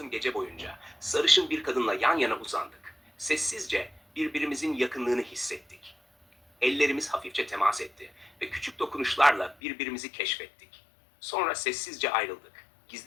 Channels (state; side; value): drops out; right; at 9.6 s